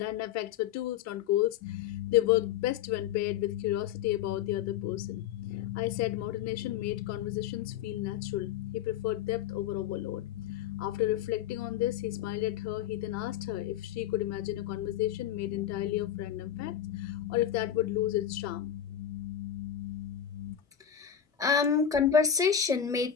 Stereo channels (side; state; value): right; quieter; 9.6 dB